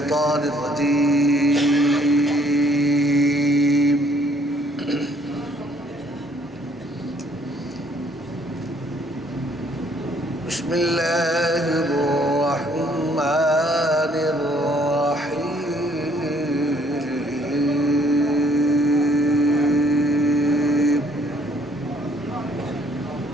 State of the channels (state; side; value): normal; both; correlation 0.64